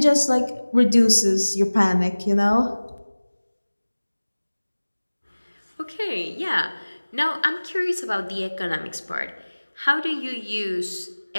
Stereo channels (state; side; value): inverted; both; correlation -1.00